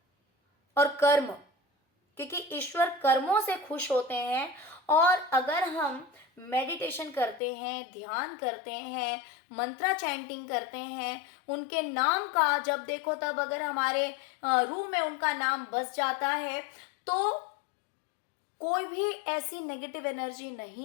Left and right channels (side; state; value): right; drops out; at 7.4 s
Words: और कर्म, क्योंकि ईश्वर कर्मों से खुश होते हैं। और अगर हम मेडिटेशन करते हैं, ध्यान करते हैं, मंत्रा चैंटिंग करते हैं, उनके नाम का जब देखो तब अगर हमारे रूह में उनका नाम बस जाता है, तो कोई भी ऐसी नेगेटिव एनर्जी